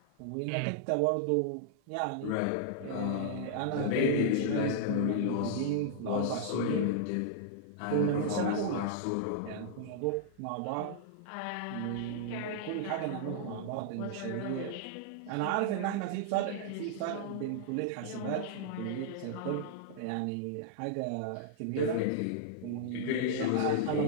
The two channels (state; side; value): different; both; correlation -0.01